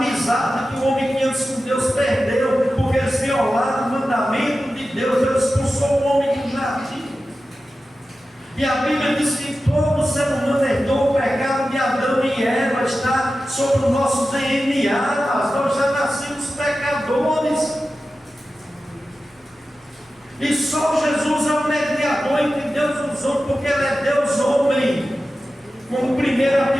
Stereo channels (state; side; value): normal; both; correlation 0.93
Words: que o homem tinha com Deus perdeu, porque eles violaram o mandamento de Deus. Deus expulsou o homem do jardim. E a Bíblia diz que todo ser humano herdou o pecado de Adão e Eva, está sobre o nosso DNA, mas nós já nascemos pecadores. E só Jesus é o mediador entre Deus e os homens, porque Ele é Deus homem, como 1